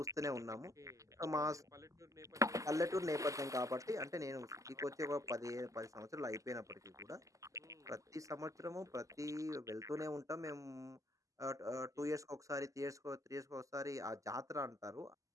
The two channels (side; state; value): left; late; 0.16 ms